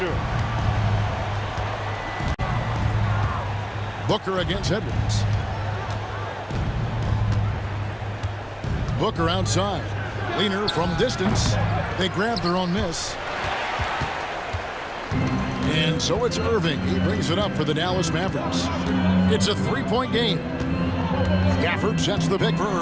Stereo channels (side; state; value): both; identical; correlation 1.00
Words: Booker against Edwards. Booker outside. Leaner from distance. They grab their own miss. And so it's Irving. He brings it up for the Dallas Mavericks. It's a three-point game. Gafford sets the pick for